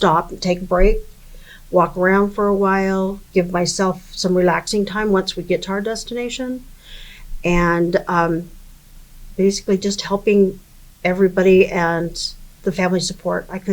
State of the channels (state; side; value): identical; both; correlation 1.00